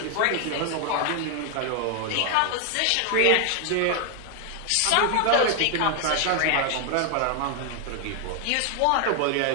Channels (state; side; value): different; both; correlation 0.00